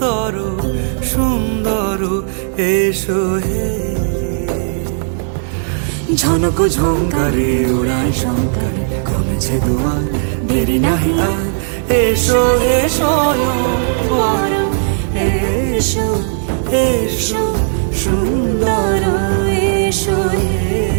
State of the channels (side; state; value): left; silent; digital silence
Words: সুন্দর এসো হে। ঝনক ঝঙ্কারে উড়ায় শঙ্কারে কমেছে দুয়ার, দেরি নাহি আর এসো হে স্বয়ং বর। এসো এসো সুন্দর এসো হে।